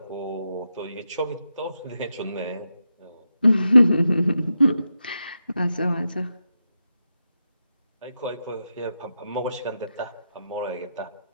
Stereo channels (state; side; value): inverted; both; correlation -0.87